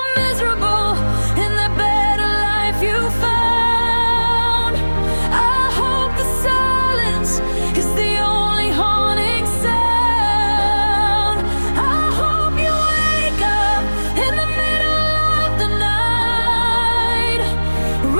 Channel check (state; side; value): inverted; both; correlation -1.00